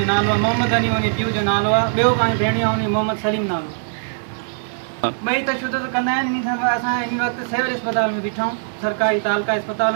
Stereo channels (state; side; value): silent; left; digital silence